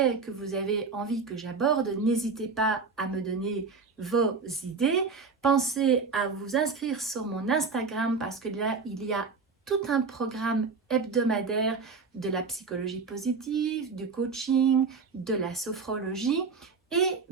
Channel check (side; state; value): left; quieter; 4.8 dB